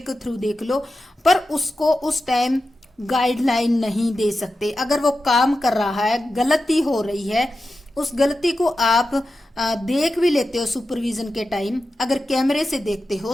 थ्रू देख लो, पर उसको उस टाइम गाइडलाइन नहीं दे सकते। अगर वो काम कर रहा है, गलती हो रही है, उस गलती को आप देख भी लेते हो सुपरविजन के टाइम, अगर कैमरे से देखते हो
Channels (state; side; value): normal; both; correlation 0.92